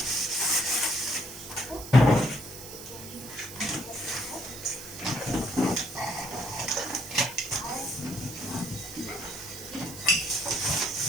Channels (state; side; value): noise; right; hiss, 13 dB below the sound